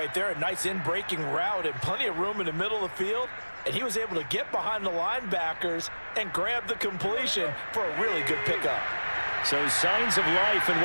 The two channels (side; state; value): both; inverted; correlation -1.00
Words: there. A nice in-breaking route and plenty of room in the middle of the field. And he was able to get behind the linebackers and grab the completion for a really good pickup. So signs of life in